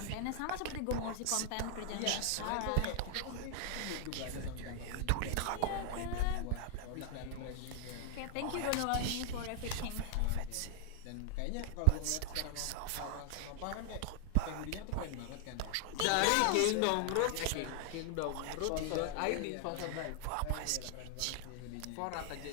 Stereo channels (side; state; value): both; different; correlation 0.00